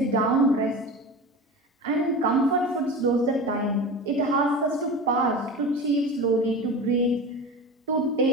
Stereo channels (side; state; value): both; normal; correlation 0.30